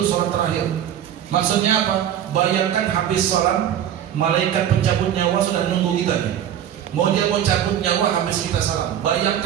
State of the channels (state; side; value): quieter; left; 10.3 dB